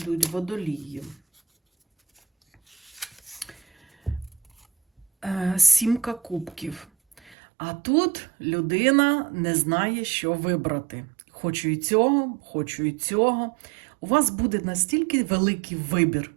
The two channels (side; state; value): left; drops out; at 7.4 s